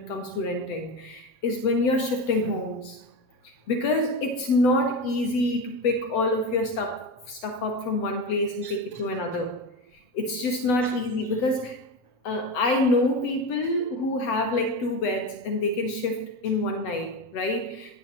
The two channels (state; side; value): late; right; 8.0 ms